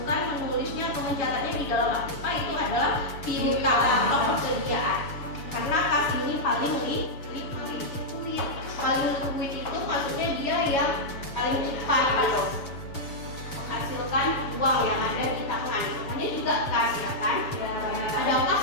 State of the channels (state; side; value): late; right; 7.1 ms